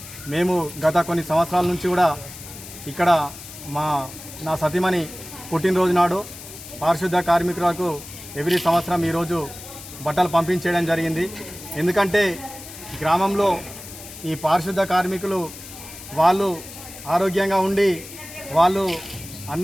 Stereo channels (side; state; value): left; noise; hiss, 14 dB below the sound